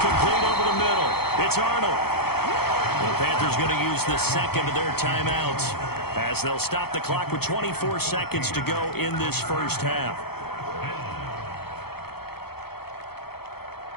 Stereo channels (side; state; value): right; late; 0.96 ms